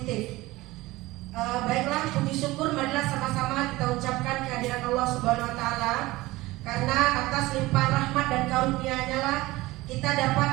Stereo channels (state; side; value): quieter; left; 19.4 dB